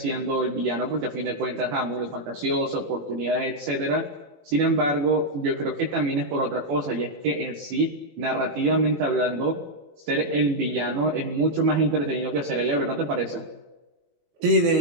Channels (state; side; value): late; left; 18 ms